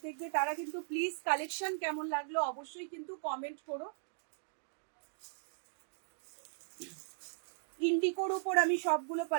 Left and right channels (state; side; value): silent; left; digital silence